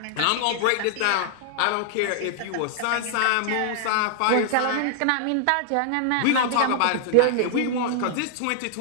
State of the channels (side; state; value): both; different; correlation -0.01